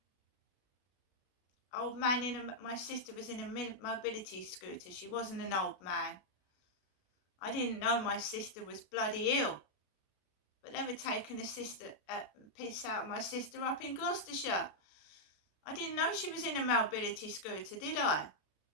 Old man my sister was in a mobility scooter. She wasn't an old man. I didn't know my sister was bloody ill. But they were taking a piss out of my sister up in Gloucestershire. I didn't know she was in a mobility scooter, did I?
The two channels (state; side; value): late; right; 33 ms